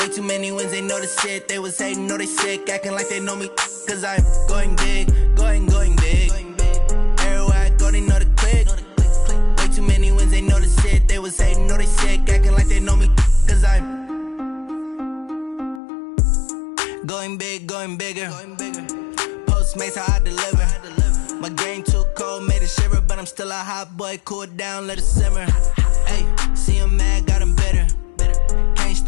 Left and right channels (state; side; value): drops out; right; at 15.8 s